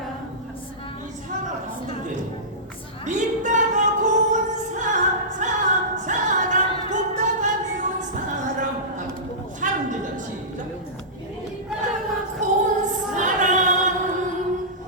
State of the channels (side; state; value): both; normal; correlation -0.18